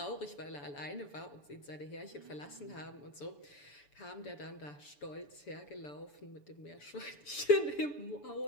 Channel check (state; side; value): late; right; 6.9 ms